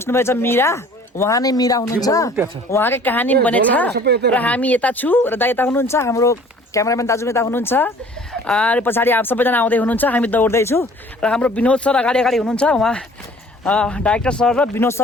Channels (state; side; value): normal; both; correlation 0.51